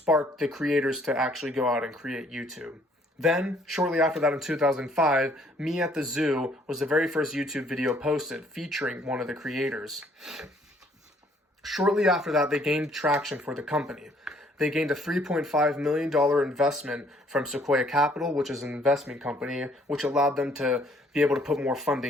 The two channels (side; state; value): both; normal; correlation 0.63